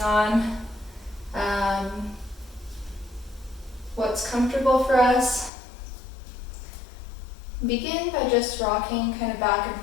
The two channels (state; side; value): drops out; right; at 5.5 s